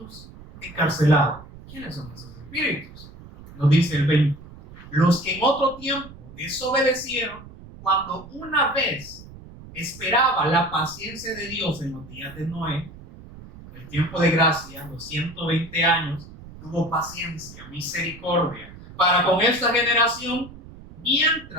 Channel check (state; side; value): noise; right; rumble, 18 dB below the sound